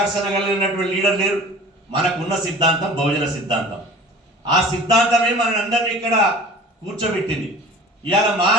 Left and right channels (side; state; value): both; normal; correlation 0.43